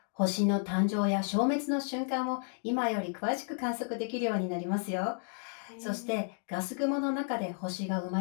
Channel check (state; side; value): silent; right; 56 dB below the other